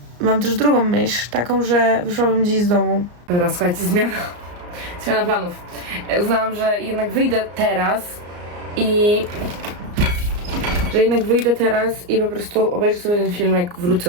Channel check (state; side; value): late; left; 34 ms